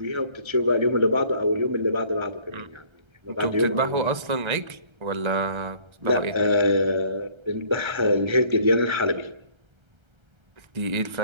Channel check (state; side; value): late; left; 1.3 ms